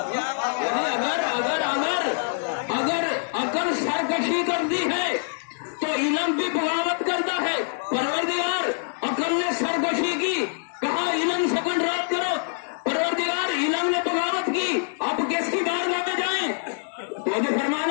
اگر عقل سرکشی کرتی ہے تو علم بھی بغاوت کرتا ہے. پروردگار عقل نے سرکشی کی، کہا علم سے کنٹرول کرو. پروردگار علم نے بغاوت کی. اب کس کی بارگاہ میں جائیں؟ توجہ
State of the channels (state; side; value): silent; right; 62 dB below the other